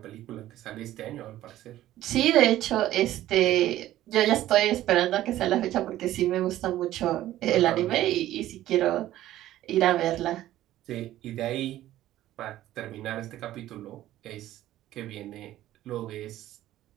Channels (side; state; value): left; quieter; 14.1 dB